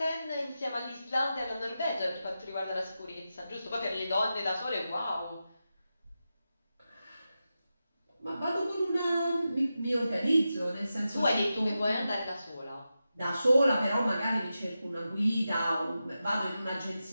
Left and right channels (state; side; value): inverted; both; correlation -0.91